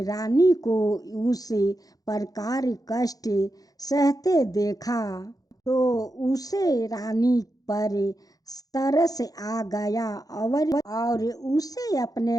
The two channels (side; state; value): right; late; 0.18 ms